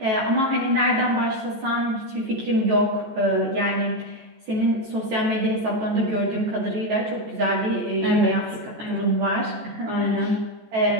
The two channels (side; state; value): left; late; 14 ms